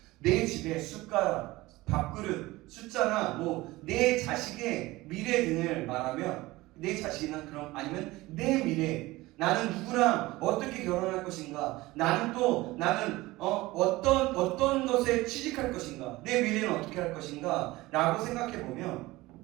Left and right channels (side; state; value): left; quieter; 19.5 dB